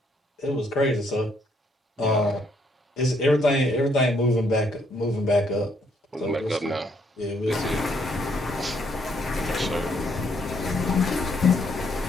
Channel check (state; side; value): normal; both; correlation 0.70